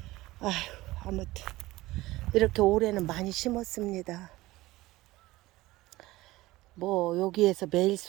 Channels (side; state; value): left; quieter; 18.5 dB